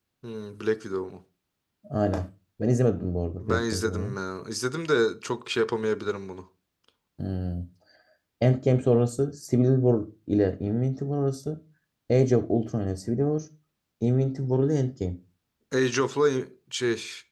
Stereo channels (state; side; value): identical; both; correlation 1.00